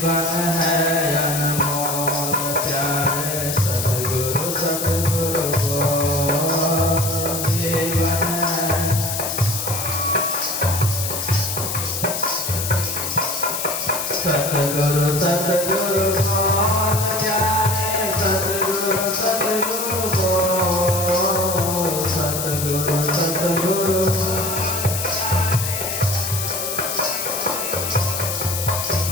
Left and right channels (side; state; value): left; noise; hiss, 3 dB below the sound